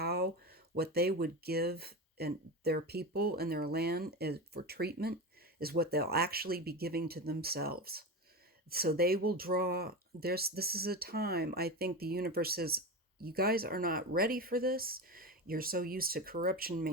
what they would give and their people and their land for treatment is what they'll actually be giving to themselves. So they will draw, this is a time, I think the universe says, you guys are not ready for this. You're so used to corruption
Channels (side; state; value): both; normal; correlation 0.22